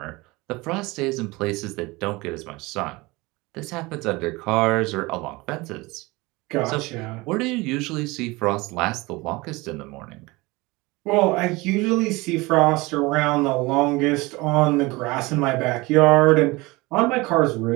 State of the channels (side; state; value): left; quieter; 22.9 dB